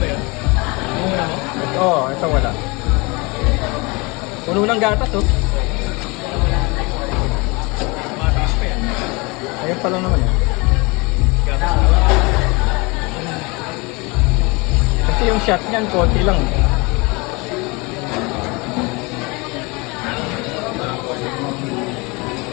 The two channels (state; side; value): quieter; right; 26.8 dB